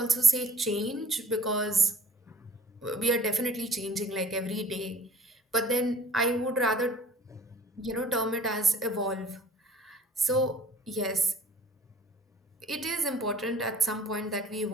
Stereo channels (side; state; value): both; normal; correlation 0.50